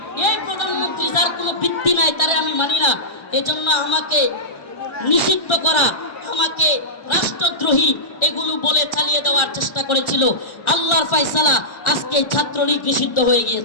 এই প্রধানমন্ত্রী যার কোনো ভিত্তি নাই তারে আমি মানি না, এজন্য আমাকে নিষিদ্ধ করা, আমাকে রাষ্ট্রদ্রোহী এগুলো বলে চালিয়ে দেওয়ার চেষ্টা করেছিল। আল্লাহর ফয়সালা আজকে ছাত্রলীগ নিষিদ্ধ হয়ে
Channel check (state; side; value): late; right; 1.4 ms